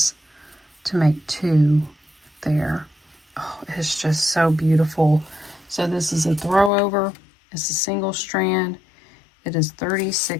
to make 2 there. Oh, it's just so beautiful. So this is a throw over. It's a single strand. It is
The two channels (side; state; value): right; drops out; at 6.7 s